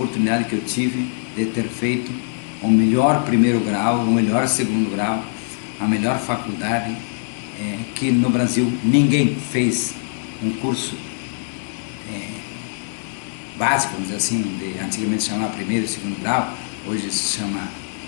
que eu tive de ter feito o melhor primeiro grau, o melhor segundo grau, a melhor faculdade, que no Brasil ninguém fez um curso básico, vamos dizer assim, antigamente se chamava primeiro e segundo grau, hoje se chama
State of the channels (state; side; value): silent; right; digital silence